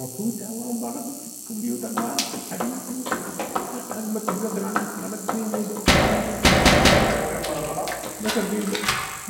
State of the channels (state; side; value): identical; both; correlation 1.00